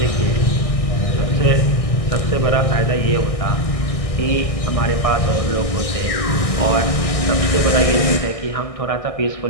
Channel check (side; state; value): right; late; 1.6 ms